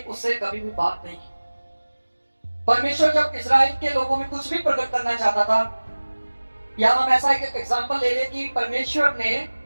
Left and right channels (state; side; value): inverted; both; correlation -1.00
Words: उससे कभी भी बात नहीं की। परमेश्वर जब इस्राएल के लोगों में कुछ भी प्रकट करना चाहता था, या हम ऐसा एक एग्जांपल ले ले कि परमेश्वर ने